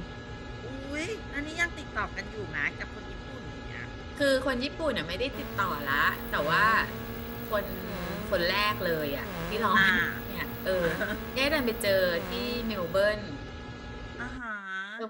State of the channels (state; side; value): identical; both; correlation 1.00